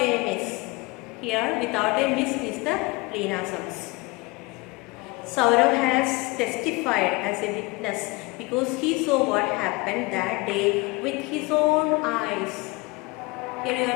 miss. Here without a miss is the pleonasms. Saurav has testified as a witness because he saw what happened that day with his own eyes. Here you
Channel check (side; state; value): right; quieter; 24.7 dB